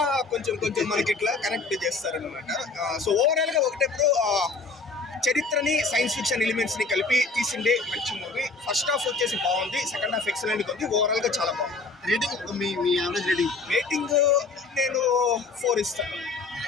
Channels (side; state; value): right; quieter; 3.9 dB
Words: కొంచెం మనకి ఇట్లా కనెక్ట్ చేస్తారనమాట. సో ఓవరాల్ గా ఒకటే చరిత్రని సైన్స్ ఫిక్షన్ ఎలిమెంట్స్ ని కలిపి తీసిండే మంచి మూవీ. ఫస్ట్ హాఫ్ వచ్చేసి బాగుంది, సెకండ్ హాఫ్ ఎక్సలెంట్ ఉంది, ఓవరాల్ గా చాలా బాగుంది. రేటింగ్ మీ యావరేజ్ రేటింగ్ నేను 4 ఇస్తాను.